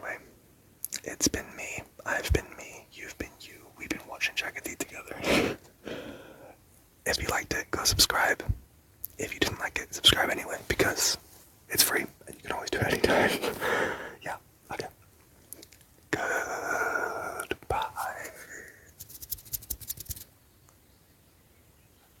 it's been me, I've been me, you've been you, we've been watching Jaggedy together. If you liked it, go subscribe. If you didn't like it, subscribe anyway, because it's free, and you can always do it anytime. Yeah, okay. Goodbye.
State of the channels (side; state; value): both; identical; correlation 1.00